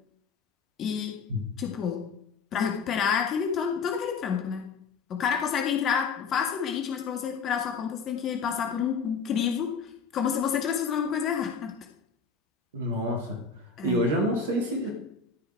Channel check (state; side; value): quieter; right; 5.2 dB